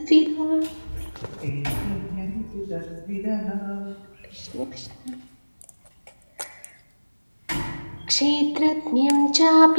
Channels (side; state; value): both; inverted; correlation -1.00